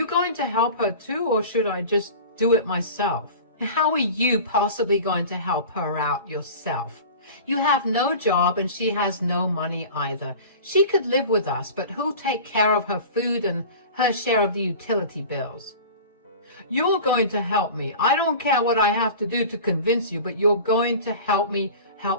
going to help her too, or should I just do it myself? How are you possibly going to help her out yourself? You have no job and she has no money either. She could live with us, but who'll take care of her food and her share of the utility bills? You're going to help me. I don't care what I have to do to convince you, but you're going to help me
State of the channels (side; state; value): both; inverted; correlation -0.37